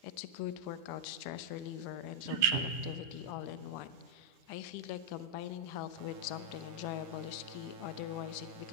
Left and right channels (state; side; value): late; left; 9.9 ms